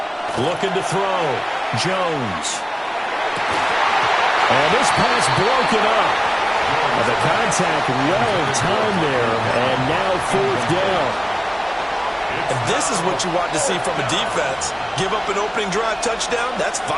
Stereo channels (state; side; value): identical; both; correlation 1.00